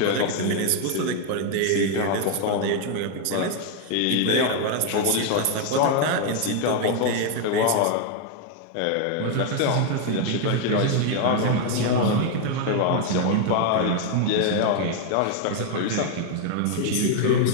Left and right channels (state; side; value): different; both; correlation 0.00